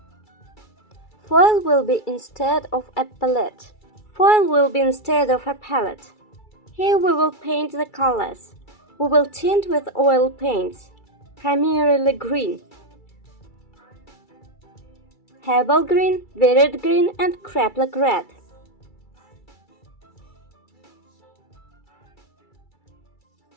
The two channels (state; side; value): late; right; 2.3 ms